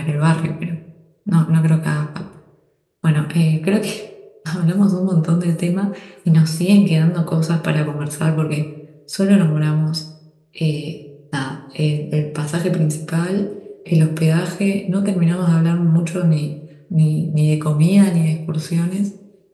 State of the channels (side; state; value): both; identical; correlation 1.00